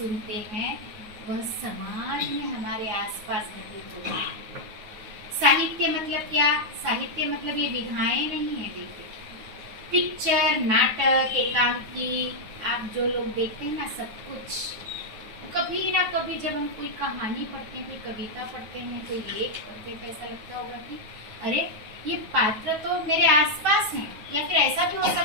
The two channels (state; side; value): late; left; 9.3 ms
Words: हैं वह समाज में हमारे आसपास घटित होता है। साहित्य मतलब क्या? साहित्य मतलब ये विधाएं नहीं है। देखिए, पिक्चर, नाटक, एकांकी, आप जो लोग देखते हैं ना, सब कुछ कभी ना कभी जब हम कोई कहानी पढ़ते हैं, कोई कविता पढ़ते हैं, कोई लेख पढ़ते हैं, तो ऐसा लगता होगा कि अरे ये पात्र तो मेरे आसपास हैं, या फिर ऐसा भी हो